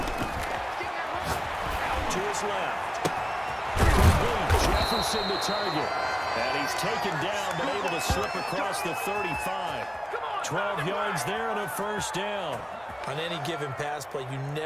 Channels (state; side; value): identical; both; correlation 1.00